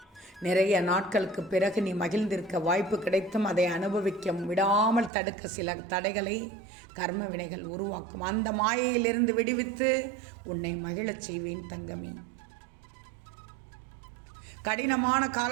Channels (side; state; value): left; drops out; at 5.1 s